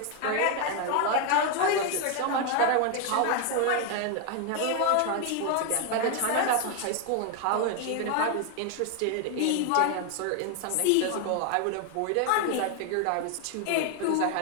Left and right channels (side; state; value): both; different; correlation 0.01